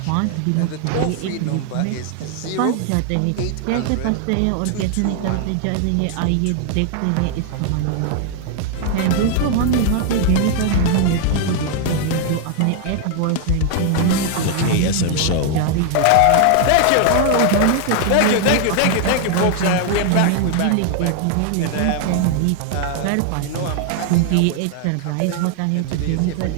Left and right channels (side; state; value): both; different; correlation 0.00